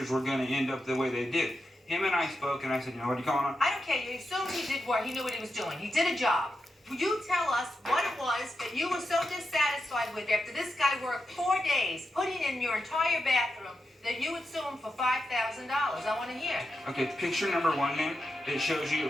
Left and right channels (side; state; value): both; normal; correlation 0.88